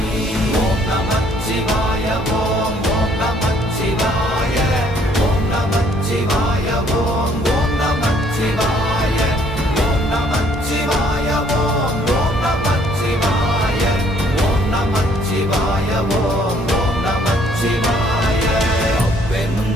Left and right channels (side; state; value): both; normal; correlation 0.63